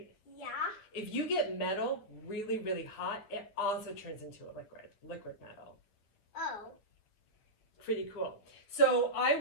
Yeah. If you get metal really, really hot, it also turns into a liquid metal. Oh. Pretty cool. So I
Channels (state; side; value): late; right; 9.7 ms